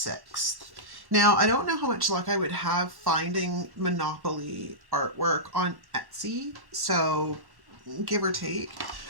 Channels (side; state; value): left; late; 1.1 ms